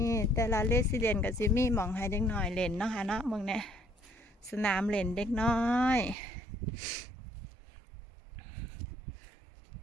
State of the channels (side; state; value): left; drops out; at 6.2 s